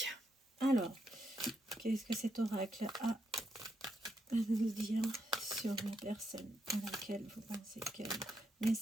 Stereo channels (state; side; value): normal; both; correlation 0.80